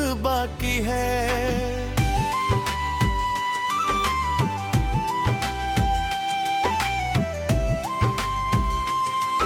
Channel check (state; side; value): identical; both; correlation 1.00